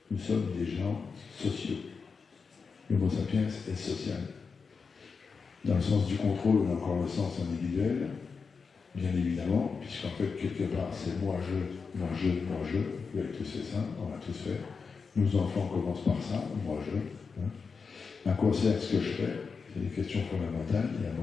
Nous sommes des gens sociaux. L'Homo sapiens est social. Dans le sens du contrôle, on a encore le sens individuel, bien évidemment, puisqu'en fait, quelque part, c'est moi, je, vous avez tous fait ça, on l'a tous fait. Nos enfants commencent par ça, moi, je. À quoi sert ce que je fais? C'est des questions fondamentales. Il y a un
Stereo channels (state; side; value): quieter; right; 5.2 dB